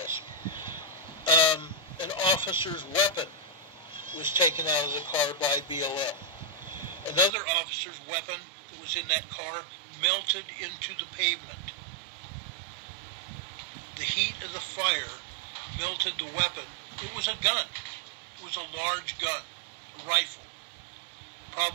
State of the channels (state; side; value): drops out; left; at 7.3 s